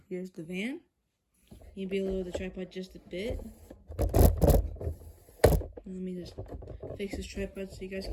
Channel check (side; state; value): both; identical; correlation 1.00